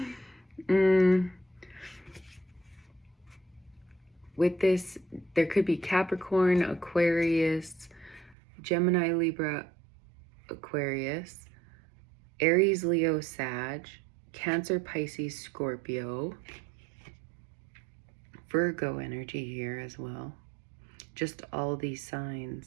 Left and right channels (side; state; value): left; drops out; at 8.3 s